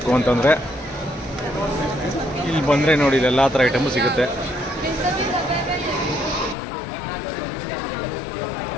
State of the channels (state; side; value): drops out; right; at 6.6 s